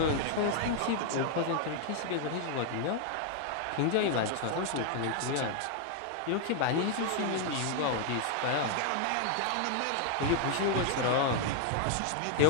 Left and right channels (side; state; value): both; different; correlation 0.00